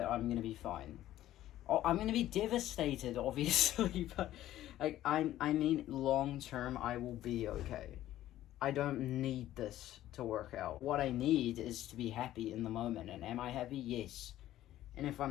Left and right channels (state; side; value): quieter; right; 13.6 dB